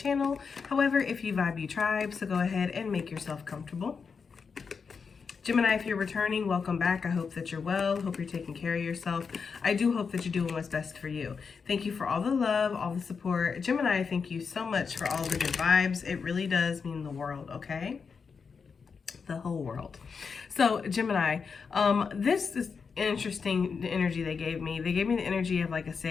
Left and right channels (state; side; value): quieter; right; 5.6 dB